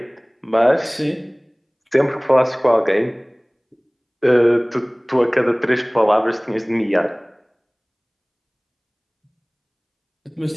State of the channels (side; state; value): both; identical; correlation 1.00